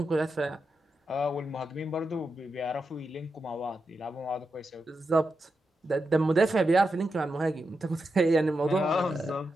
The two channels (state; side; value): normal; both; correlation 0.87